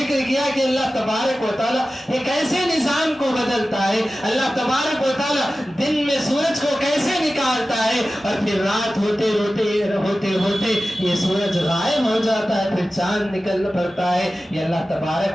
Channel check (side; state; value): both; normal; correlation 0.95